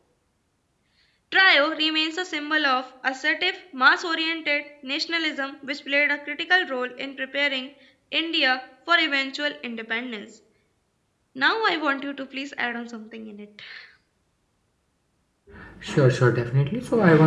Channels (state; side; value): identical; both; correlation 1.00